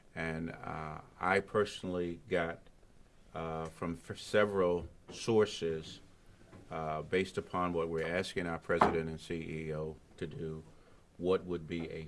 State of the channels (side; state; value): both; identical; correlation 1.00